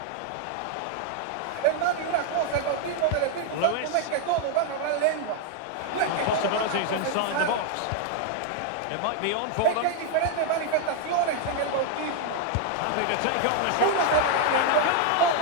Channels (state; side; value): different; both; correlation 0.00